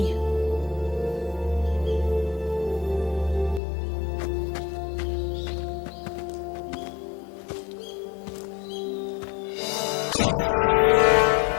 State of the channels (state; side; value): drops out; right; at 3.6 s